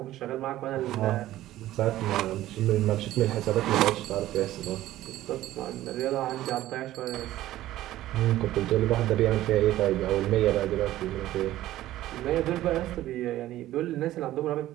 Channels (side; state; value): left; quieter; 14.7 dB